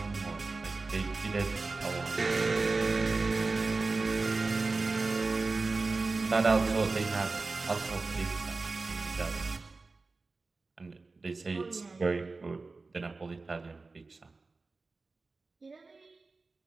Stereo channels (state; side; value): quieter; left; 3.7 dB